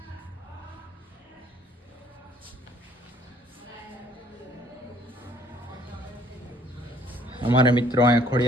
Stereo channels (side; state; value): both; normal; correlation 0.60